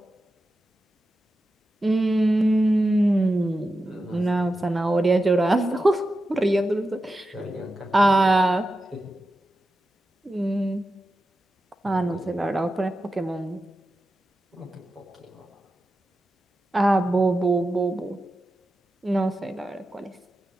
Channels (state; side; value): normal; both; correlation 0.91